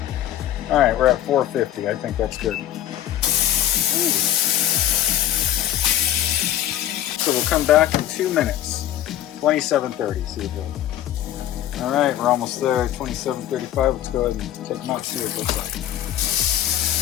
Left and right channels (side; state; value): right; quieter; 12.1 dB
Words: All right, we're at 450. I think that's good. Ooh. So we'll come back in 2 minutes. 27:30. See it goes. All right, we're almost there. 27:35. Let's go ahead and take them out. See what it looks like.